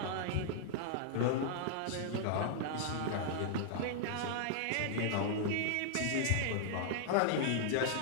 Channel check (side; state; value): both; different; correlation -0.01